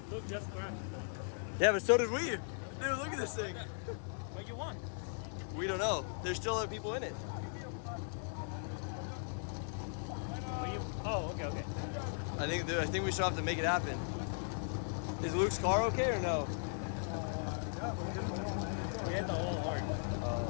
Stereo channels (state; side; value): silent; right; 52 dB below the other